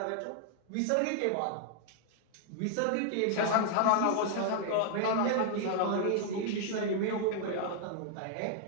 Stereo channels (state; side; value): different; both; correlation 0.00